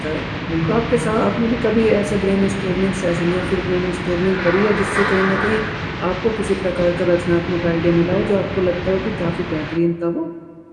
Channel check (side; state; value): both; identical; correlation 1.00